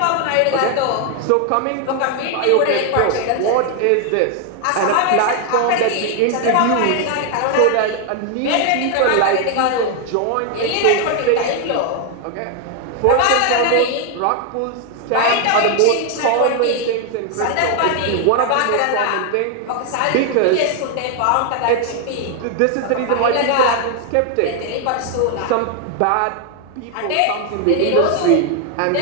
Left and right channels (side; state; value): both; different; correlation 0.01